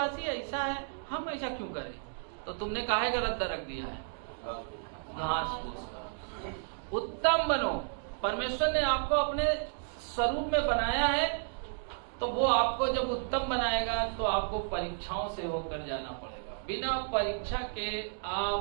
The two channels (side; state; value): left; silent; digital silence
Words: ऐसा है, हम ऐसा क्यों करें? तो तुमने काहे का रद्दा रख दिया है? घास फूस का। उत्तम बनो। परमेश्वर ने आपको अपने स्वरूप में बनाया है, तो वो आपको जब उत्तम बनाएगा तो आपको परीक्षाओं से होकर जाना पड़ेगा। बिना परीक्षा के